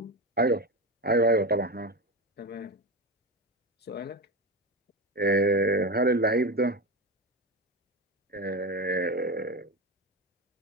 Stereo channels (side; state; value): both; normal; correlation 0.18